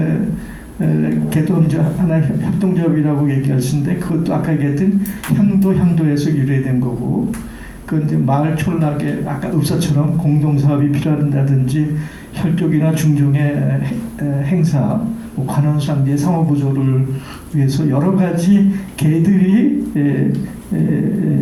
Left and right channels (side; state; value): both; identical; correlation 1.00